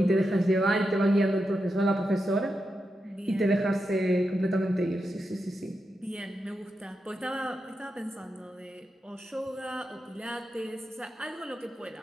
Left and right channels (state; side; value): normal; both; correlation 0.87